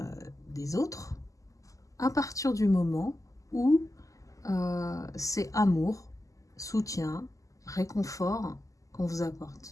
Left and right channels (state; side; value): late; right; 0.16 ms